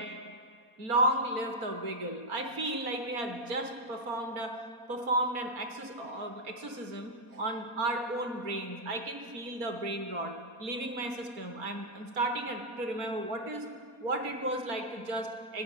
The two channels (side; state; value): left; late; 4.2 ms